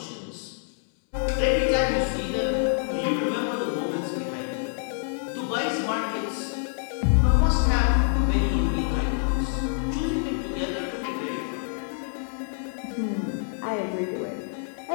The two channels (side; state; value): right; silent; 61 dB below the other